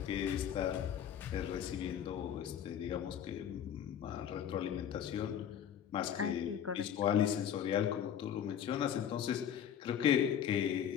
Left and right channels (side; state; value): right; quieter; 9.2 dB